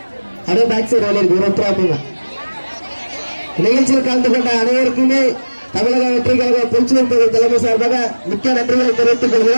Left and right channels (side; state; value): both; inverted; correlation -1.00